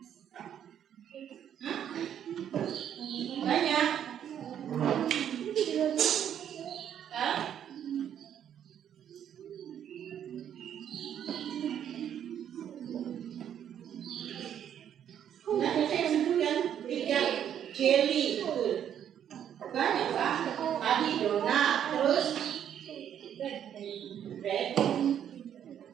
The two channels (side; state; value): left; quieter; 9.6 dB